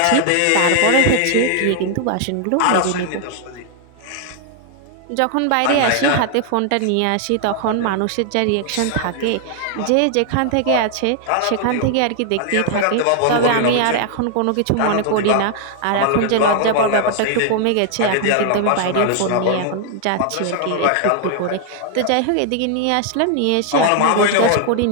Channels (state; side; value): different; both; correlation 0.00